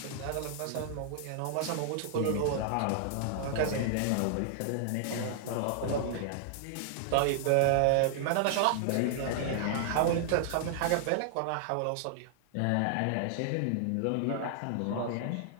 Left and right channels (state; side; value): different; both; correlation -0.01